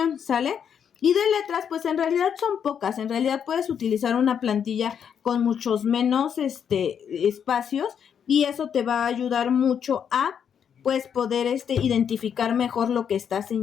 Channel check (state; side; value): quieter; right; 7.9 dB